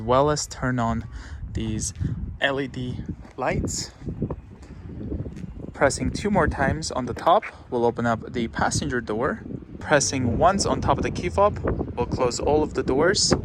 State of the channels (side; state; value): both; identical; correlation 1.00